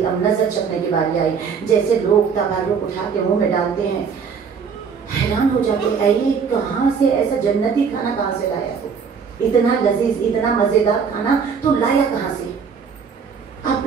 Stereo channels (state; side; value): quieter; left; 6.2 dB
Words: अब नजर चखने की बारी आई। जैसे लोग तबारुक उठा के मुँह में डालते हैं, हैरान हो जाते, अरे कहाँ से ऐसा जन्नती खाना कहाँ से लाया हो? इतना लजीज, इतना मजेदार खाना तो लाया कहाँ से?